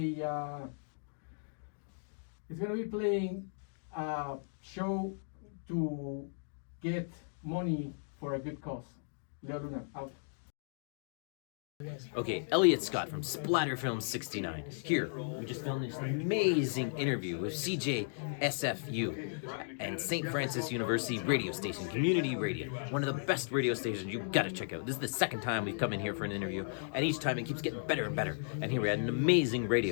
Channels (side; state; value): right; silent; digital silence